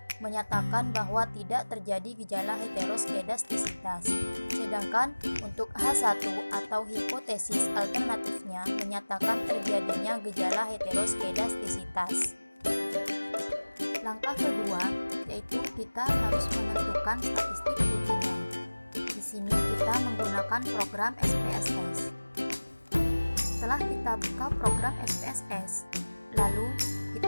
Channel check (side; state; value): both; inverted; correlation -1.00